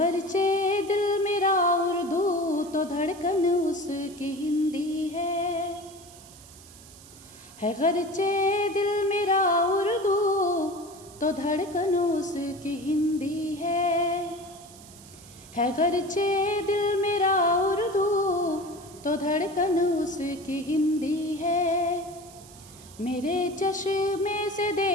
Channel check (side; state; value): right; noise; hiss, 20 dB below the sound